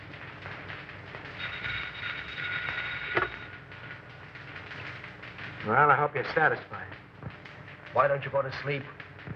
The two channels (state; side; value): identical; both; correlation 1.00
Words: Well, I hope you're satisfied. Why don't you go to sleep?